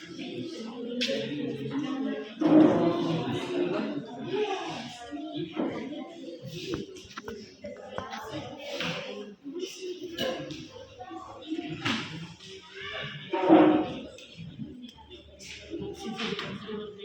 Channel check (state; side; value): identical; both; correlation 1.00